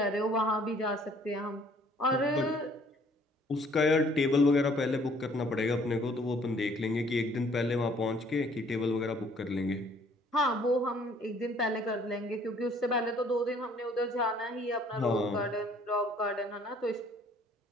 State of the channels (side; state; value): both; normal; correlation 0.59